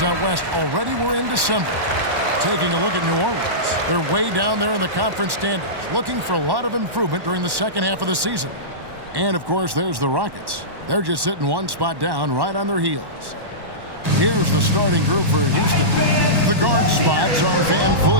out west. Already we're in December. Taking a look at New Orleans. They're way down there in the conference standings, looking for a lot of improvement during the second half of the season. And, of course, there's the Rockets. They're just sitting one spot down right on their heels. Here's the starting group for Houston. The guard spots are Van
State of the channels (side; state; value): left; late; 1.1 ms